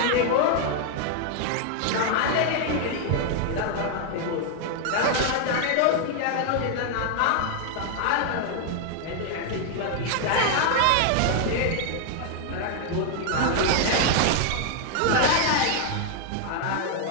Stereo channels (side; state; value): both; different; correlation 0.00